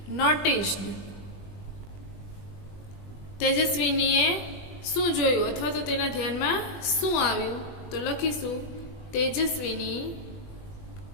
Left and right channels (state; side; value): late; right; 20 ms